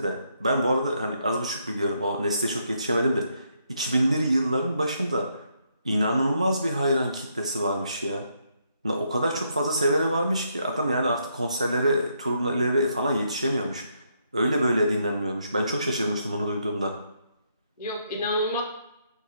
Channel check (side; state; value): both; inverted; correlation -0.76